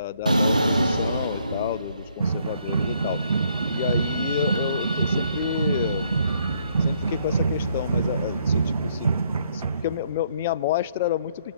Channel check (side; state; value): both; inverted; correlation -0.68